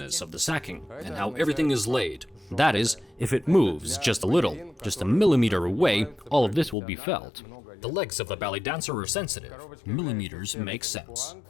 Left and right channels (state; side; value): drops out; right; at 6.8 s